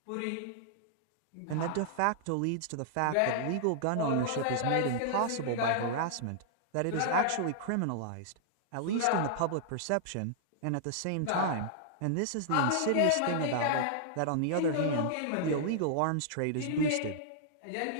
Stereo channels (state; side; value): different; both; correlation -0.01